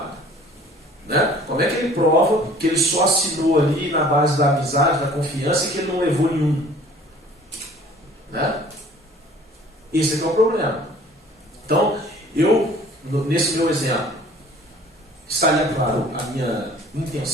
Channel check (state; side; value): normal; both; correlation 0.51